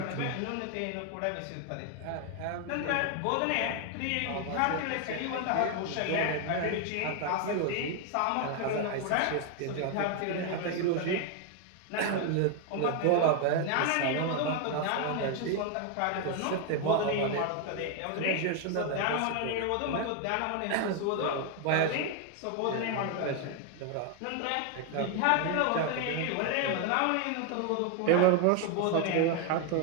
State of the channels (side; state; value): both; different; correlation 0.01